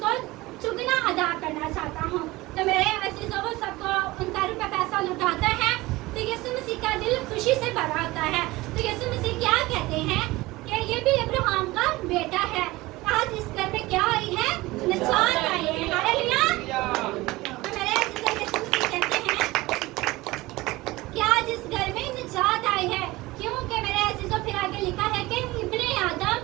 चुगना अदा करना चाहता हूँ। तो मेरे अजीजों वो सबको उनका रुपया पैसा लुटाता है तो यीशु मसीह का दिल खुशी से भरा होता है। तो यीशु मसीह क्या कहते हैं कि ये भी अब्राहम का बेटा है। आज इस घर में क्या आई है? निजात आई है। हालेलुया। तो मेरे अजीजों यीशु मसीह कहते हैं कि आज इस घर में निजात आई है। क्योंकि मेरे अजीजों फिर आगे लिखा है कि इब्ने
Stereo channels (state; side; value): quieter; left; 20.1 dB